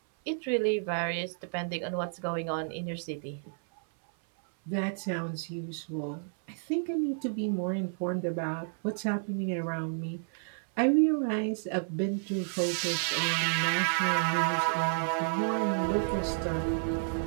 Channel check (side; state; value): left; silent; 57 dB below the other